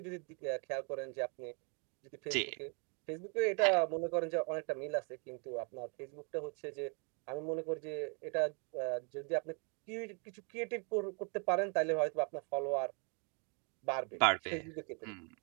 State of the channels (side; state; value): left; quieter; 37.1 dB